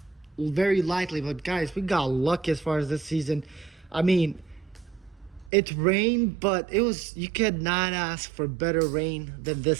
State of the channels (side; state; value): left; drops out; at 5.5 s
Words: very lightly. But guys, we got lucky as far as this season. I mean, it rained, but you could not ask for better rain than this